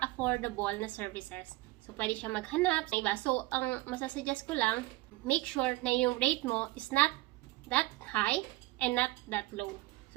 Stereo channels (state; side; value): quieter; left; 19.4 dB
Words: affordable na services. So, pwede siya maghanap ng iba. So, ang masasuggest ko lang, make sure na yung rate mo is not that high and not that low.